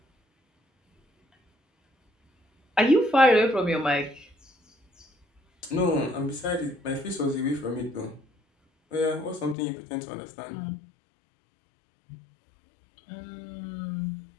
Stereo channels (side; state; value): right; drops out; at 9.6 s